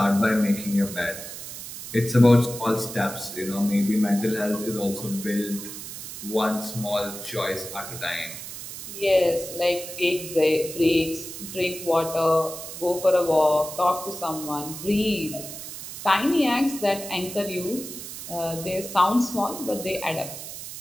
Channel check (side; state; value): right; noise; hiss, 10 dB below the sound